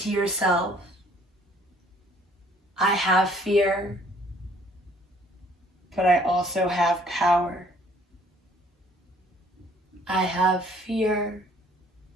yourself, I have fear, but I also have power. I have fear,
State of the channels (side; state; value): both; normal; correlation 0.59